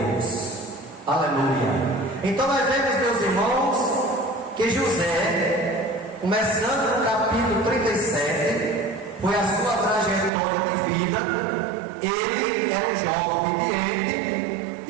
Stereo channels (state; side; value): drops out; left; at 10.3 s